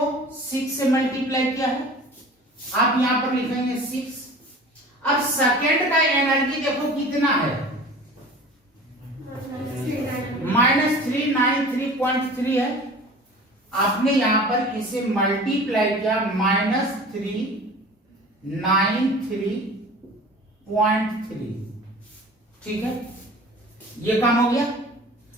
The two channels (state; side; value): normal; both; correlation 0.41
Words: 6 से मल्टीप्लाई किया है, आप यहां पर लिखेंगे 6। अब सेकेंड का एनर्जी देखो कितना है, -393.3 है। आपने यहां पर इसे मल्टीप्लाई किया -393.3, ठीक है, ये काम हो गया।